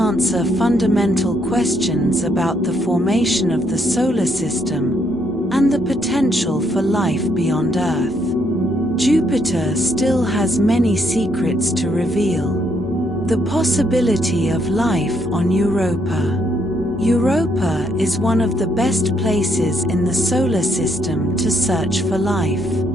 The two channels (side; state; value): both; normal; correlation 0.73